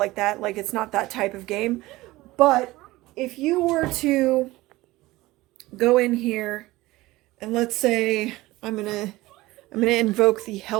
that. Like, it's not that type of game. But if you were to go in here and let's say I'm gonna invoke the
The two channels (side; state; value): left; quieter; 19.0 dB